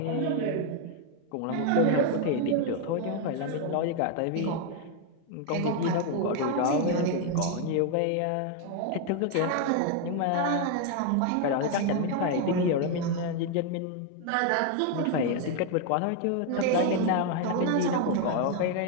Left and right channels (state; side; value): different; both; correlation 0.01